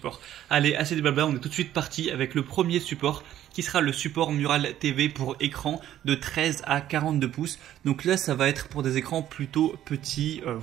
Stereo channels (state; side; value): quieter; left; 12.1 dB